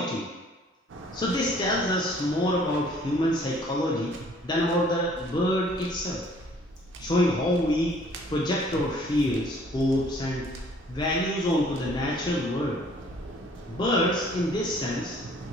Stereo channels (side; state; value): both; normal; correlation 0.57